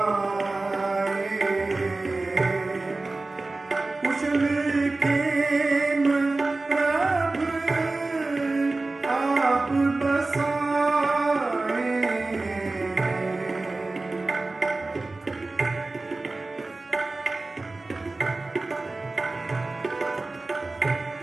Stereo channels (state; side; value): quieter; left; 3.3 dB